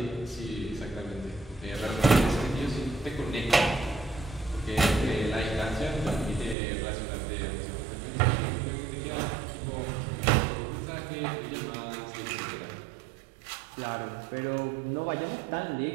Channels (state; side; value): drops out; left; at 6.6 s